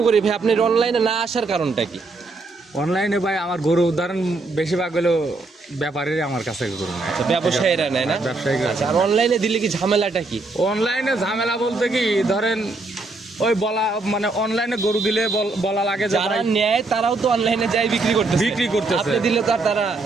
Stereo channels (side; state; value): left; quieter; 3.3 dB